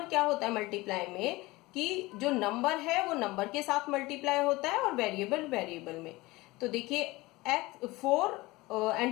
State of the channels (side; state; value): right; quieter; 21.0 dB